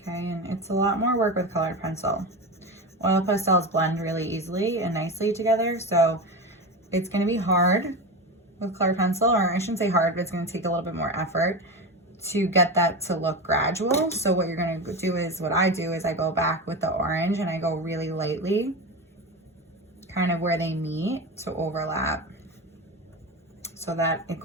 and it's a lot more work with colored pencil. Oil pastels blend really easily and nicely together, so it's gonna be hard with colored pencil, or I shouldn't say hard, but it's gonna take a little bit more effort to get that to look gradual. So what you're going to do is, what I do is I go back with the orange and I go really lightly, kind of where they meet to overlap, so that it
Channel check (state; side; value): normal; both; correlation 0.22